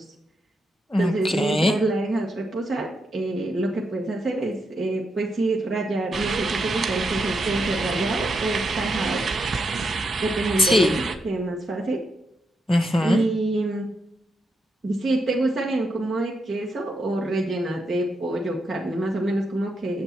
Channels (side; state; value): both; normal; correlation 0.82